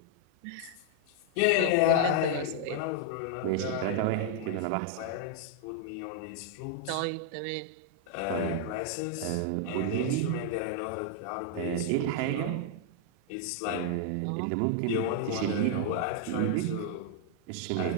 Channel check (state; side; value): different; both; correlation 0.00